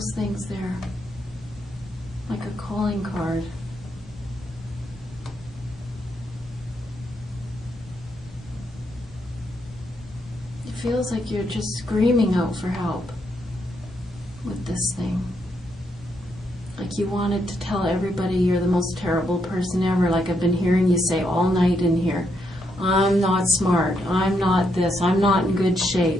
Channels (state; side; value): normal; both; correlation 0.78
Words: things there? Like a calling card. It feels like you're just screaming out for help with this thing. Like you wanted to tell everybody you're the most terrible person ever, like I've been hearing you say all night in here. I'm not smart, I'm not this, I'm not in good